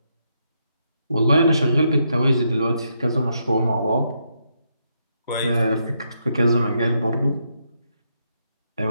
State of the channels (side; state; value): both; inverted; correlation -0.79